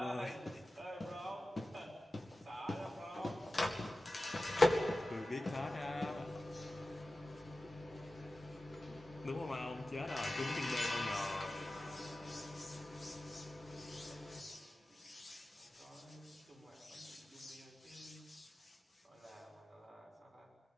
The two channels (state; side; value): normal; both; correlation 0.95